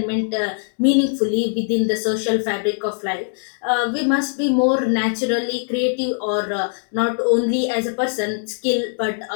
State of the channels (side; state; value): right; silent; digital silence